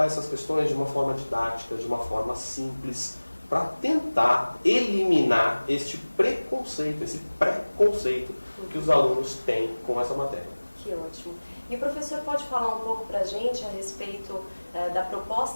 essas questões de uma forma didática, de uma forma simples, para tentar eliminar este preconceito, esse preconceito que os alunos têm com essa matéria. Que ótimo. E o professor pode falar um pouco para a gente a respeito da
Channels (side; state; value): both; inverted; correlation -1.00